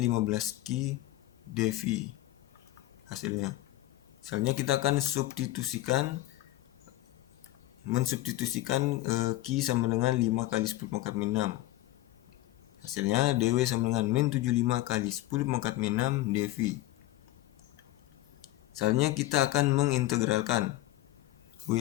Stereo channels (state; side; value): quieter; right; 16.7 dB